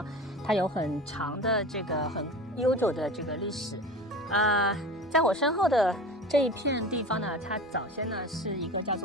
它有很长的这个很悠久的这个历史。在我身后的这一片地方呢，它早先呢是一个叫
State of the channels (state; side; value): normal; both; correlation 0.34